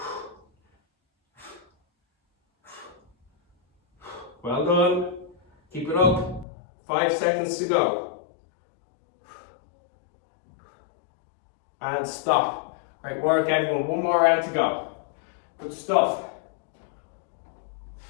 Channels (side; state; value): right; drops out; at 6.5 s